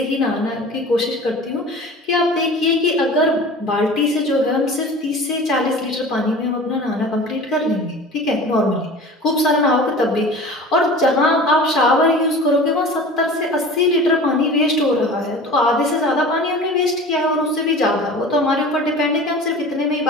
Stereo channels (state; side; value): normal; both; correlation 0.39